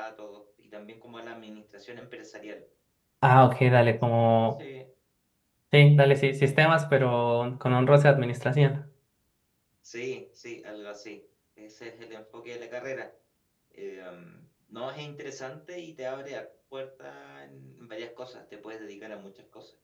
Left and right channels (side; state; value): both; identical; correlation 1.00